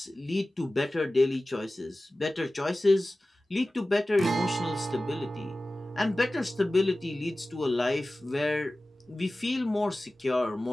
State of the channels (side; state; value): both; normal; correlation 0.96